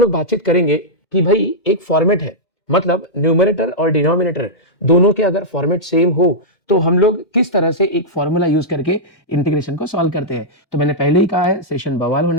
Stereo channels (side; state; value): right; late; 1.8 ms